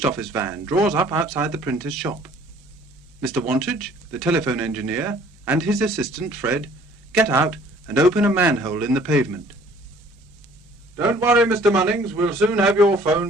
office van draws up outside the printer's shop. Mr. Wantage, the telephone engineer, and his assistant, Fred, get out and open a manhole in the pavement. "Don't worry, Mr. Munnings, we'll soon have your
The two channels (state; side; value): normal; both; correlation 0.54